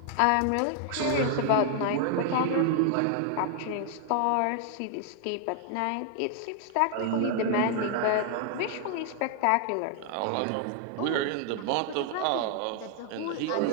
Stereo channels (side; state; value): both; different; correlation 0.00